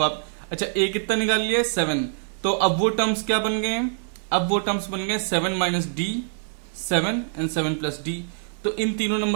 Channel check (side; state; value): left; silent; 57 dB below the other